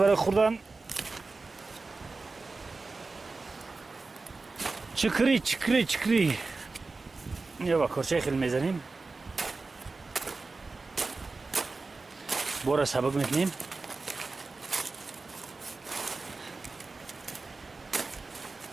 خوردن. چکری چکری چکری. یا با کرچه خیلی میزنیم. بورا سبک میکنیم.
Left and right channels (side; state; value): left; quieter; 3.8 dB